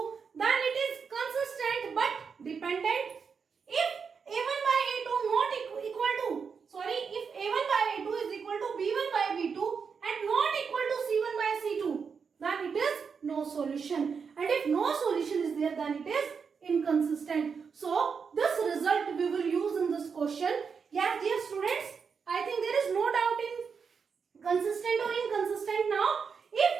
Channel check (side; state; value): left; quieter; 5.9 dB